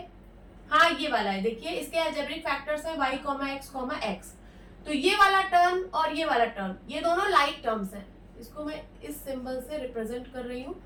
हाँ, ये वाला है, देखिए इसके एल्जेब्रिक फैक्टर्स हैं y, x। तो ये वाला टर्म और ये वाला टर्म, ये दोनों लाइक टर्म्स हैं। इसको मैं इस सिंबल से रिप्रेजेंट कर रही हूँ।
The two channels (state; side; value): identical; both; correlation 1.00